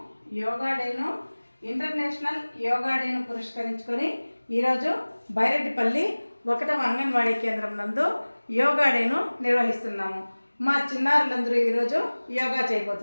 యోగా డేను ఇంటర్నేషనల్ యోగా డేను పురస్కరించుకొని ఈరోజు బైరెడ్డిపల్లి 1వ అంగన్వాడీ కేంద్రం నందు యోగా డేను నిర్వహిస్తున్నాము. మా చిన్నారులందరూ ఈరోజు యోగా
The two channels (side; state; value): both; inverted; correlation -1.00